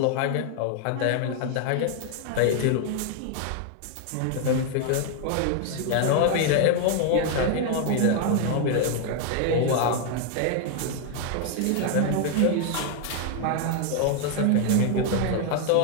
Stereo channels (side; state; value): both; different; correlation 0.00